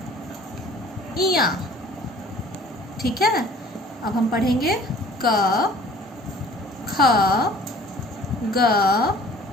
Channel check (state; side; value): normal; both; correlation 0.51